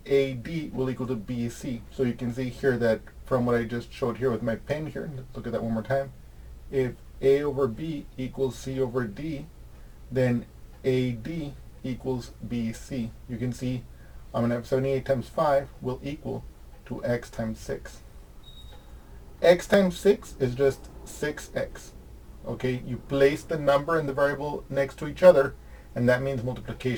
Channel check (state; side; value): identical; both; correlation 1.00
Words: AD will equal to BC. So you can see here that from what I just showed here with my pen here, let's look at that one more time. If A over B equals C over D, then AD equals BC. You can see I'm going to have 78 times 5 will equal to x times 6. X times 6 is just 6x. Okay, you place the number and the variable next to each other, and that means